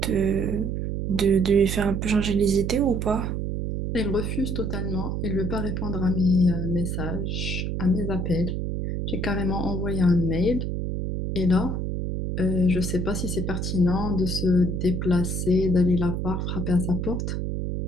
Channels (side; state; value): right; noise; hum, 2 dB below the sound